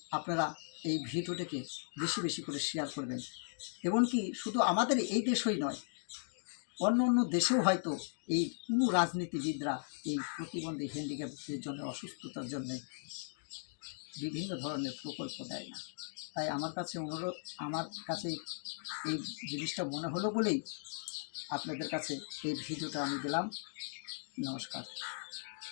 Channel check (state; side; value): silent; right; digital silence